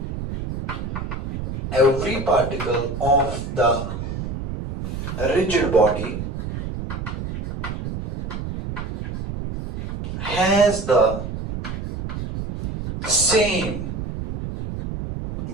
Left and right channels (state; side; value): noise; right; rumble, 6 dB below the sound